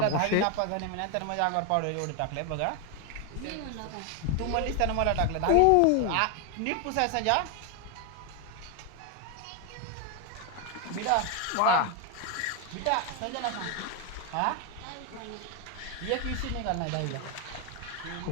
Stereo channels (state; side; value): different; both; correlation 0.01